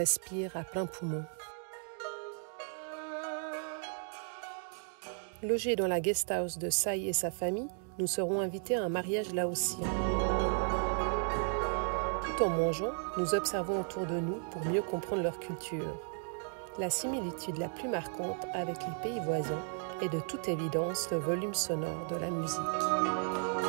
à plein poumon. Logés dans la guest house de Sai et sa famille, nous serons invités à un mariage laotien. Tout en mangeant, nous observons autour de nous pour mieux comprendre leur culture. La similitude la plus marquante avec les pays voisins est de toute évidence le volume sonore de la musique.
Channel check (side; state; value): left; silent; 55 dB below the other